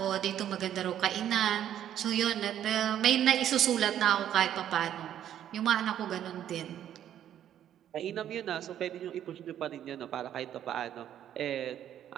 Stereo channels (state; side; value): quieter; left; 10.7 dB